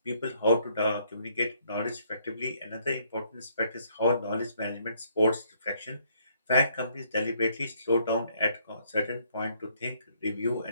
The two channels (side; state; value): both; inverted; correlation -0.68